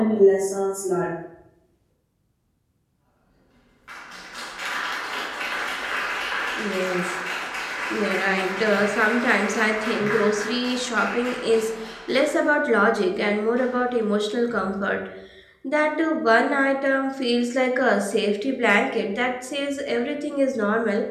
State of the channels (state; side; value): identical; both; correlation 1.00